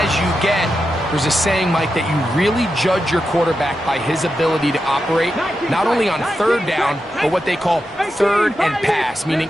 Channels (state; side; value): normal; both; correlation 0.88